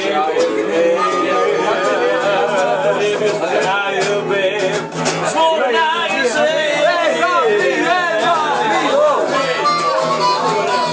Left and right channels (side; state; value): both; identical; correlation 1.00